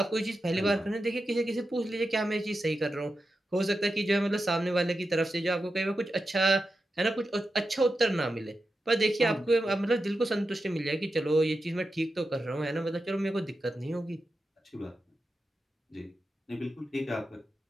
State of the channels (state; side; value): normal; both; correlation 0.90